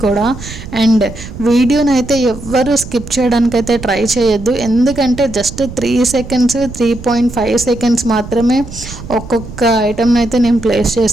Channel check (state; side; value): noise; right; rumble, 13 dB below the sound